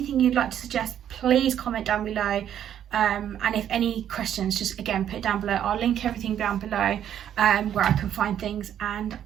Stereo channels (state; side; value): quieter; left; 10.1 dB